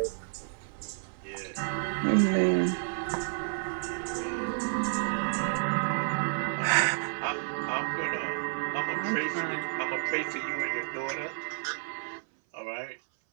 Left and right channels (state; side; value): silent; left; 57 dB below the other